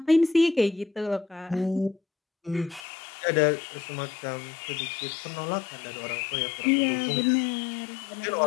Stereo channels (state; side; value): drops out; right; at 2.9 s